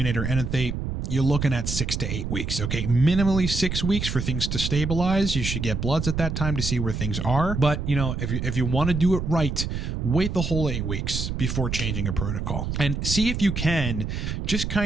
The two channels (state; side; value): noise; right; rumble, 3 dB below the sound